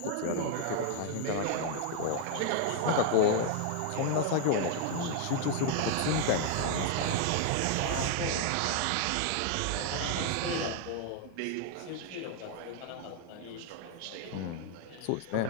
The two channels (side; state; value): both; different; correlation 0.00